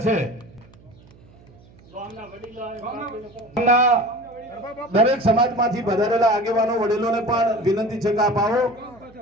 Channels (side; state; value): right; noise; hum, 25 dB below the sound